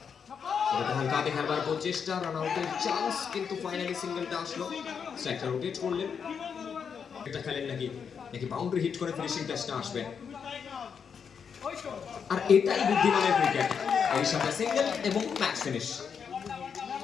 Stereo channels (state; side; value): quieter; right; 6.7 dB